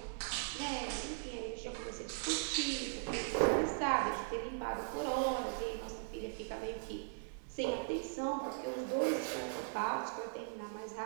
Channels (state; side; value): silent; left; 52 dB below the other